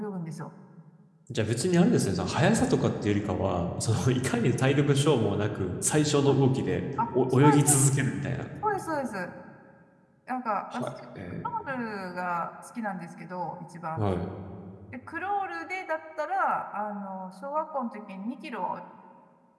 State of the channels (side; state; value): both; identical; correlation 1.00